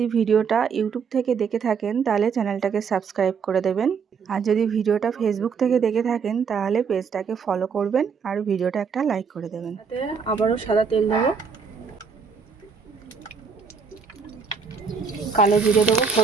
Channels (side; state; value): left; quieter; 5.9 dB